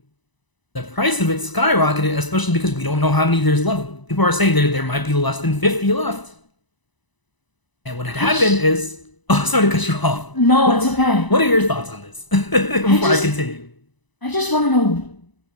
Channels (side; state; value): right; late; 1.0 ms